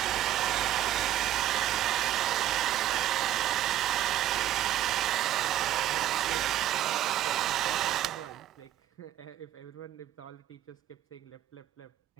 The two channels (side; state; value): left; quieter; 12.8 dB